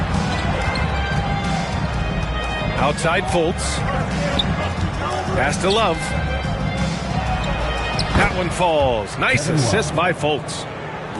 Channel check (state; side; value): identical; both; correlation 1.00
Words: Outside Fultz. Pass to Love. That one falls. Nice assist by Fultz.